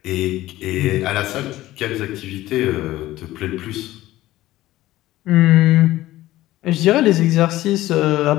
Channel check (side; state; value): right; quieter; 16.0 dB